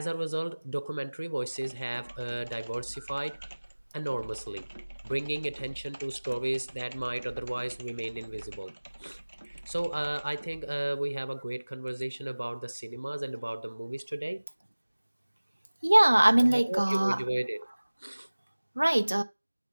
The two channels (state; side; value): inverted; both; correlation -1.00